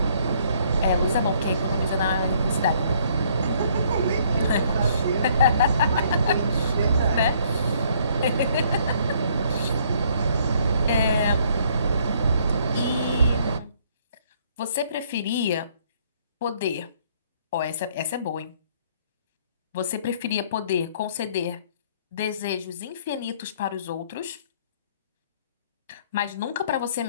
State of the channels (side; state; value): both; inverted; correlation -0.64